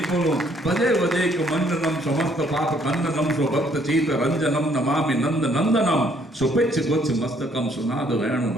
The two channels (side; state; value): both; normal; correlation 0.66